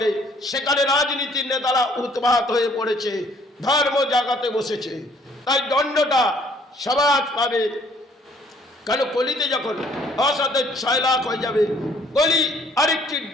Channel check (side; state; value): both; normal; correlation 0.61